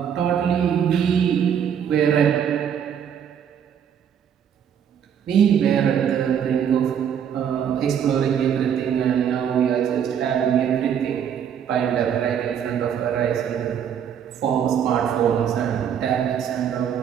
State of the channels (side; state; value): left; quieter; 8.5 dB